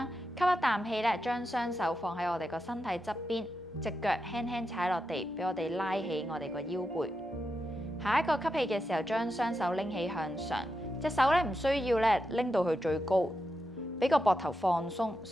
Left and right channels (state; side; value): normal; both; correlation 0.87